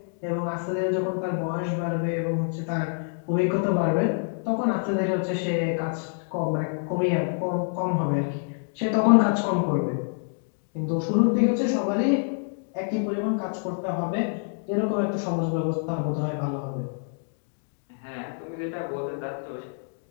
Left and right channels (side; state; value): right; silent; 58 dB below the other